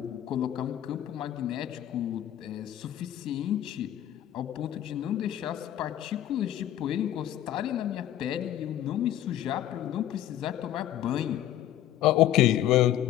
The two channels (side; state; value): right; quieter; 12.1 dB